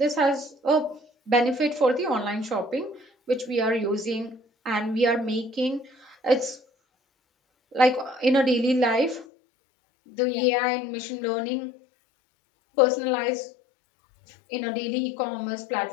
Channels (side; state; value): right; drops out; at 9.2 s